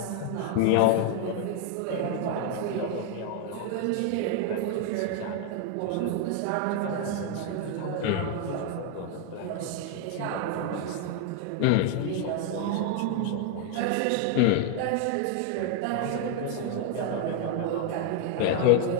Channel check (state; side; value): different; both; correlation 0.00